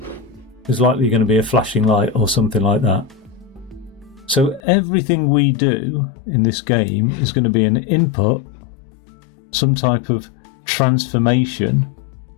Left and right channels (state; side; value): drops out; right; at 4.6 s